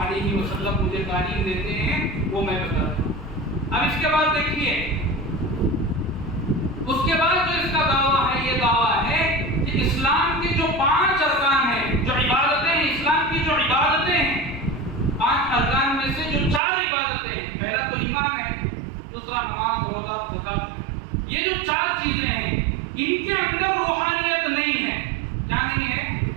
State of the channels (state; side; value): drops out; left; at 16.6 s